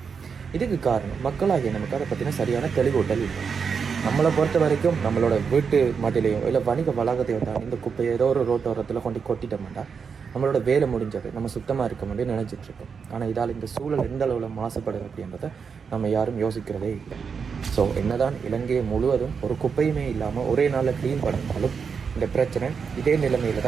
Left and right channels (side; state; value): left; quieter; 6.0 dB